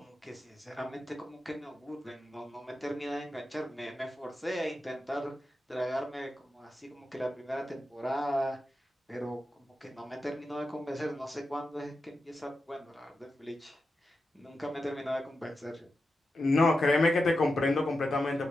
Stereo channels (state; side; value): normal; both; correlation 0.90